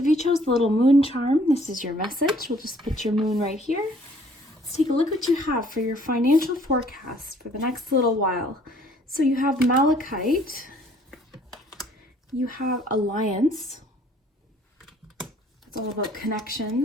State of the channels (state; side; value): normal; both; correlation 0.59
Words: if you chose the little moon charm, this is your message. We'll just put your moon right here. Let's take a look what you have for your financial forecast for the next little while. So you have Malachite, you have Alliance, it's all about